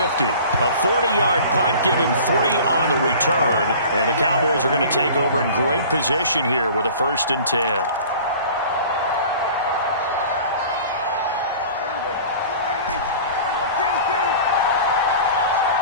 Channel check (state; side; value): inverted; both; correlation -0.43